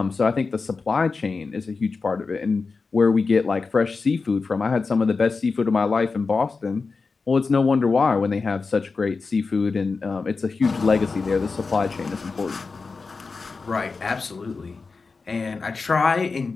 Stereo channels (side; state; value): right; quieter; 4.4 dB